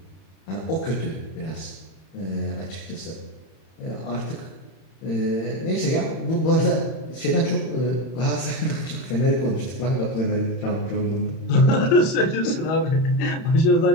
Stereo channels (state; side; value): late; right; 31 ms